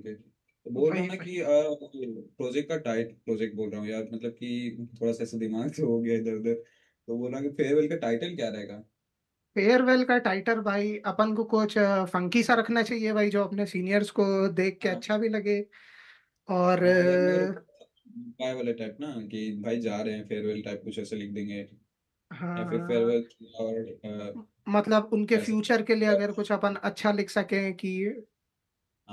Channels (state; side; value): identical; both; correlation 1.00